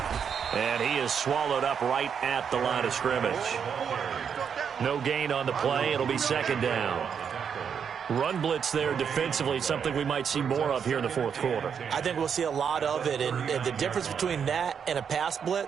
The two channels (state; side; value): quieter; left; 7.2 dB